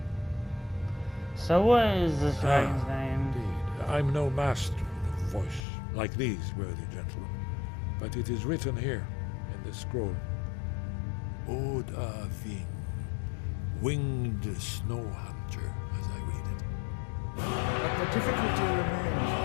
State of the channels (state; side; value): drops out; right; at 5.7 s